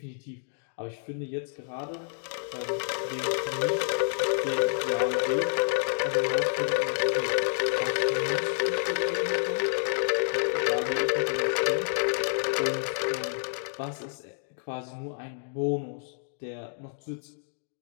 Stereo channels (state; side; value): silent; right; digital silence